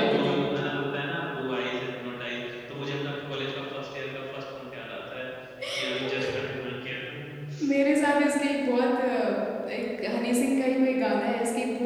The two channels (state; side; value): identical; both; correlation 1.00